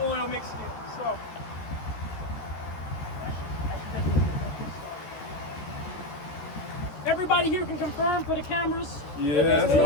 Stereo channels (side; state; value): right; late; 14 ms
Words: oil mixed in, so. Everybody here can confirm for the cameras. Yes.